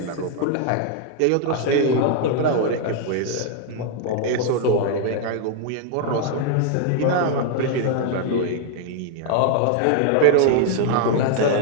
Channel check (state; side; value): different; both; correlation 0.00